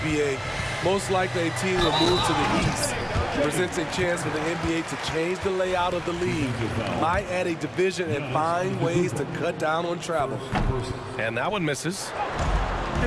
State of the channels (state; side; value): identical; both; correlation 1.00